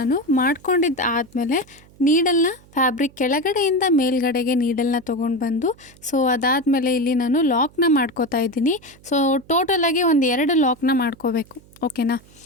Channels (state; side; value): noise; right; hum, 26 dB below the sound